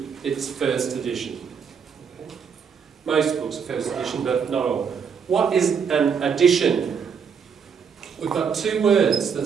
it's first edition. Okay. Most books are first edition, but not all. What is an edition? We've got two words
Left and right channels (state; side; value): quieter; left; 6.5 dB